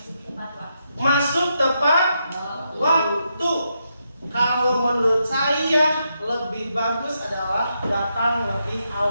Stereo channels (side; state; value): both; inverted; correlation -0.82